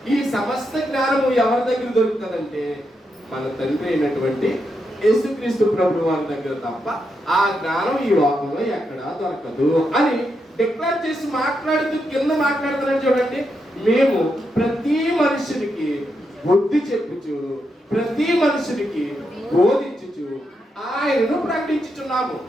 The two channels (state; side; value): normal; both; correlation 0.83